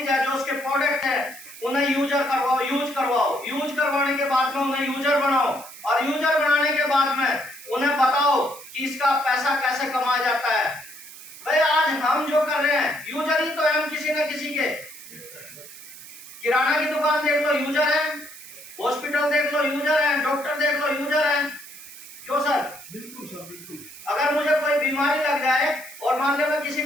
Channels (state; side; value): noise; right; hiss, 16 dB below the sound